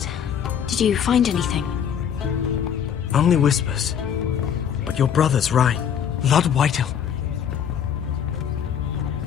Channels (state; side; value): quieter; right; 8.5 dB